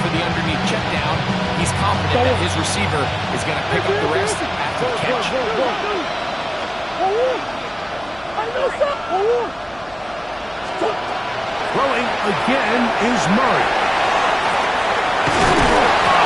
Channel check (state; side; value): noise; left; hum, 25 dB below the sound